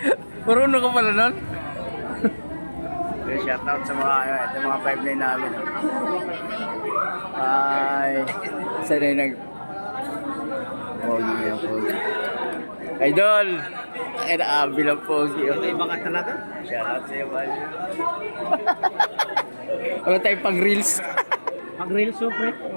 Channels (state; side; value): inverted; both; correlation -1.00